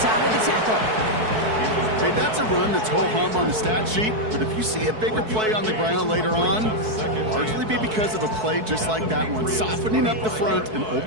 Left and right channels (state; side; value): late; left; 4.6 ms